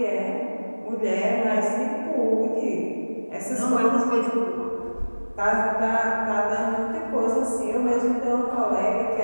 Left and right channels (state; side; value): inverted; both; correlation -1.00